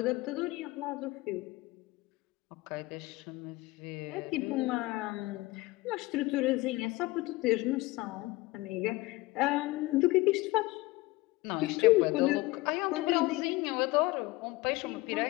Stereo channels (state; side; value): quieter; right; 20.7 dB